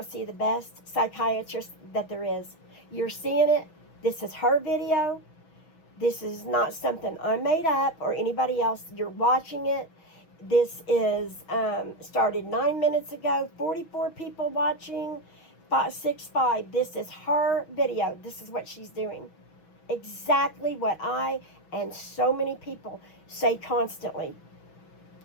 see the best psychiatrist that there is. You're seeing it. This is her video. This is not something I made up or anybody else. You're watching it. This is started 9 minutes ago. 44 people watching. 565. This is her video. This is what she's doing. Exactly what I and so many people say constantly.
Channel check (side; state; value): right; late; 6.0 ms